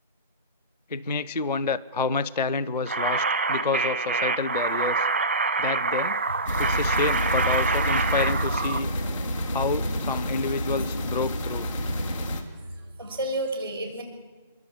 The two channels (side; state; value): both; inverted; correlation -0.30